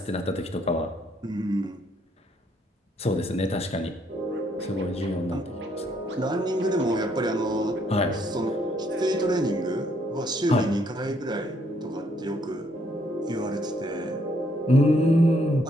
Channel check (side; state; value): both; normal; correlation 0.70